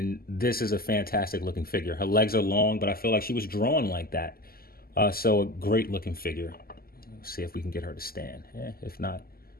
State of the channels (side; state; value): right; late; 0.43 ms